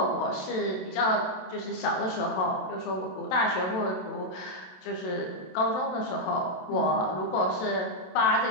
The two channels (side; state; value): right; late; 27 ms